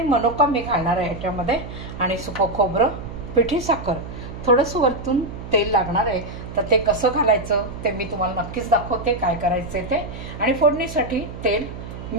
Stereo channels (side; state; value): right; noise; hum, 11 dB below the sound